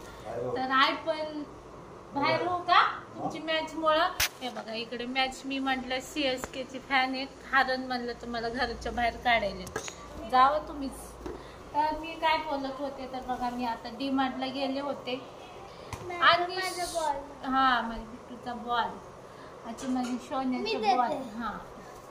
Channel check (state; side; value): identical; both; correlation 1.00